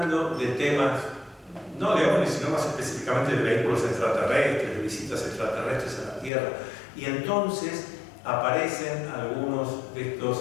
de temas, no de ovnis, sino más específicamente de vehículos extraterrestres, de visitas extraterrestres a la Tierra, y entonces aparecen algunos de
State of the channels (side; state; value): right; drops out; at 6.3 s